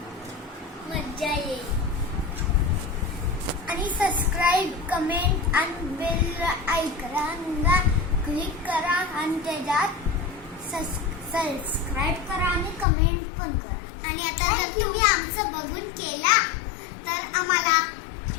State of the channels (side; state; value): right; drops out; at 12.9 s